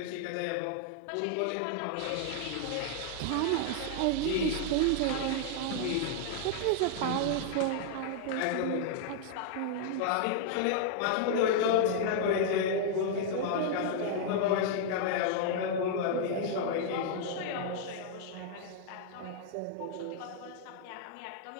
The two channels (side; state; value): both; different; correlation -0.01